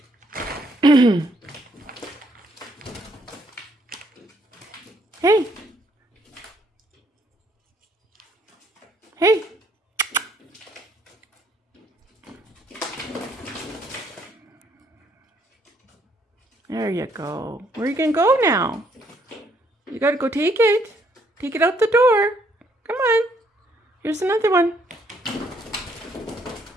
Hey. Hey. There you go. Where are you going to go now? You got to go take it. Take it out the door. Come on. Here's another one.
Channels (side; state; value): both; normal; correlation 0.68